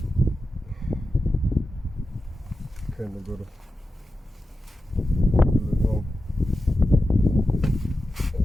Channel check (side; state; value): both; normal; correlation 0.91